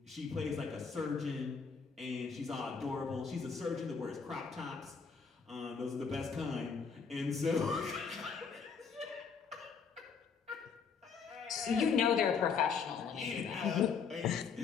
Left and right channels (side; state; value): right; quieter; 5.9 dB